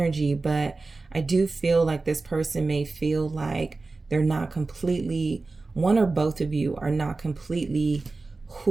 but I do feel like this person may feel like they're not completely, one or both of you are not completely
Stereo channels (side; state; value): left; quieter; 3.6 dB